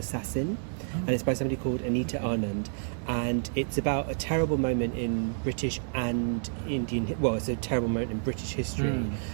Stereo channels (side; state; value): left; silent; 58 dB below the other